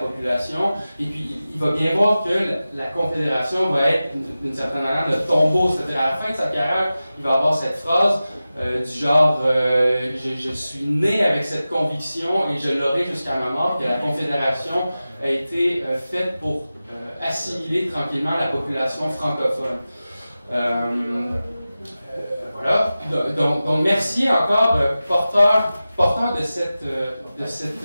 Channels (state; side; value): inverted; both; correlation -0.95